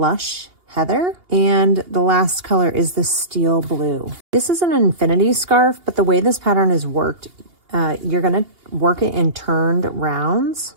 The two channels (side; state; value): left; late; 2.8 ms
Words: Heather, and the last color is the Steel Blue. This is an infinity scarf, but the way this pattern is worked, you're gonna work it in turned rounds.